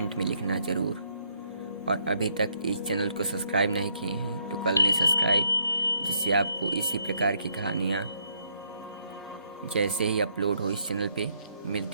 में लिखना ज़रूर। और अभी तक इस चैनल को सब्सक्राइब नहीं किए हैं तो कर लें सब्सक्राइब, जिससे आपको इसी प्रकार की कहानियाँ जैसे ही अपलोड हो इस चैनल पे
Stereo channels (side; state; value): both; inverted; correlation -0.73